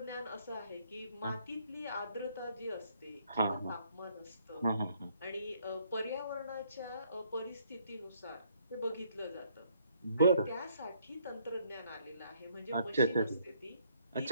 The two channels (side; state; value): both; inverted; correlation -0.68